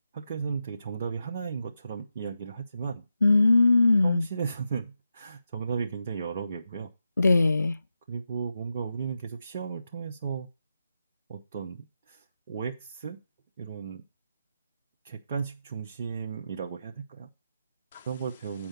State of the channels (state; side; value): inverted; both; correlation -0.88